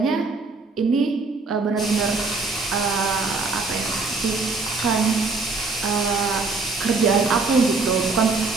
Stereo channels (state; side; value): quieter; left; 3.9 dB